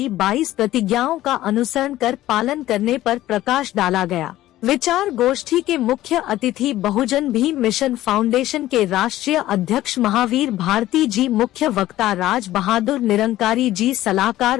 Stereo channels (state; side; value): quieter; right; 14.8 dB